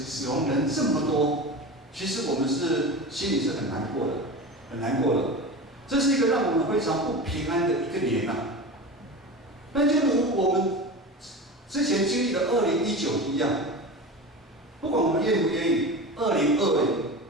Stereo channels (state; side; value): normal; both; correlation 0.29